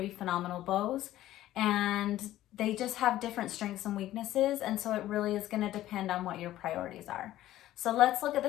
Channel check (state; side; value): quieter; right; 14.2 dB